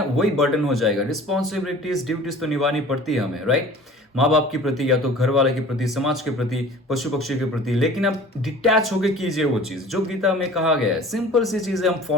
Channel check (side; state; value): both; normal; correlation 0.44